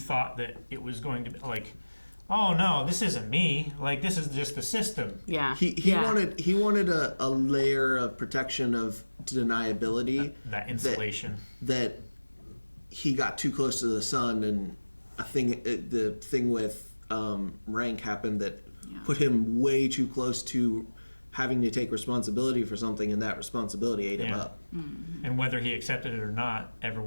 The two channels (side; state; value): both; inverted; correlation -1.00